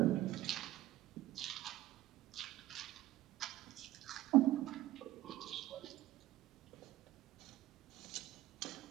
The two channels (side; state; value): left; quieter; 15.5 dB